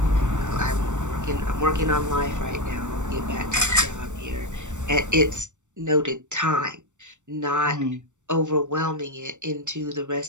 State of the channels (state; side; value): late; left; 0.85 ms